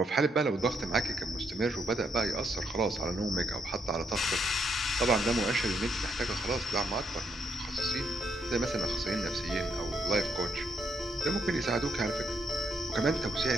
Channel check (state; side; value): normal; both; correlation 0.76